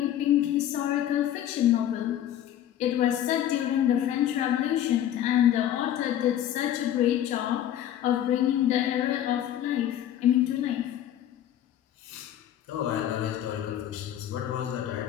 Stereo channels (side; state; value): right; quieter; 11.3 dB